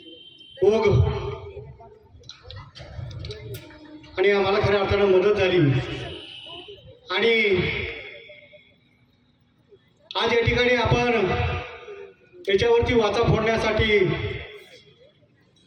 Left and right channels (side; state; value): both; identical; correlation 1.00